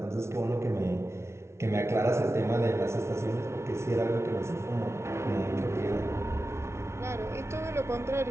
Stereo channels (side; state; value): left; late; 0.13 ms